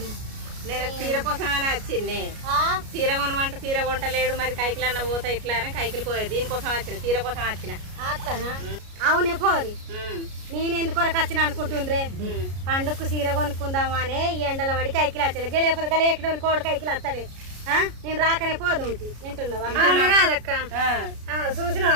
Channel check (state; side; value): late; left; 33 ms